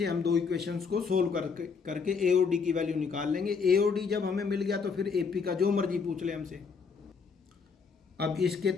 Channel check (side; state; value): right; quieter; 5.4 dB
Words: हम दो इक्वेशंस को सोल्व करके ए और डी की वैल्यू निकाल लेंगे। ए और डी जब हमें मिल गया तो फिर ए पी का जो मर्जी पूछ ले हमसे। अब इसके